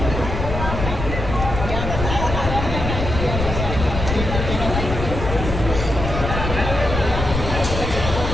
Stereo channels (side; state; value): left; noise; rumble, 4 dB below the sound